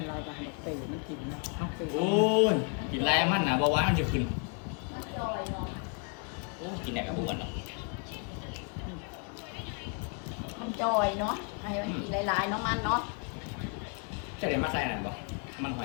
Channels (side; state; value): right; quieter; 36.3 dB